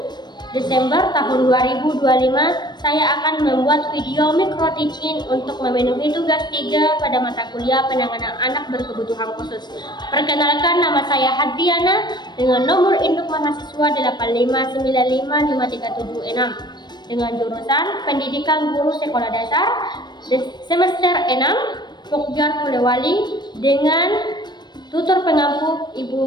Desember tahun 2025 saya akan membuat video micro teaching untuk memenuhi tugas 3 pada mata kuliah penanganan anak berkebutuhan khusus. Perkenalkan, nama saya Hadriana dengan nomor induk mahasiswa 859553776 dengan jurusan Pendidikan Guru Sekolah Dasar semester 6 Pokjar Polewali dengan tutor pengampu Ibu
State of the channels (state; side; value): late; right; 0.21 ms